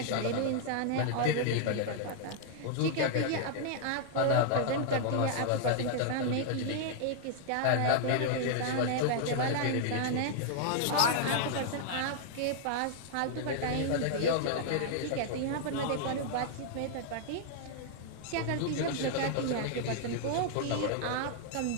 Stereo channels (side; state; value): both; different; correlation -0.01